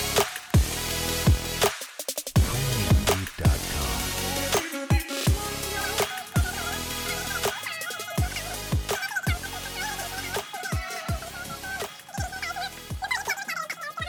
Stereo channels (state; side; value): identical; both; correlation 1.00